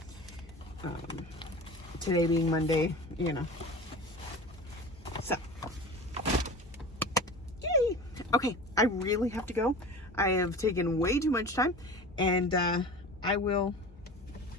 Today being Monday, you know. So, yay! Okay, I really have to go. I have taken way too much time, and I will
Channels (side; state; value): both; normal; correlation 0.35